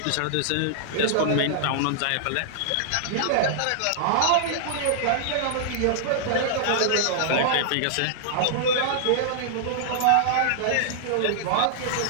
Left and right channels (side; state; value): both; different; correlation -0.01